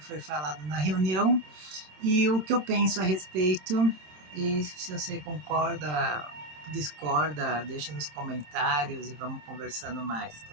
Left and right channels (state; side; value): late; left; 27 ms